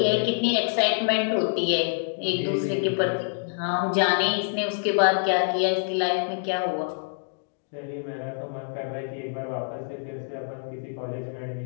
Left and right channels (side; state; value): right; silent; digital silence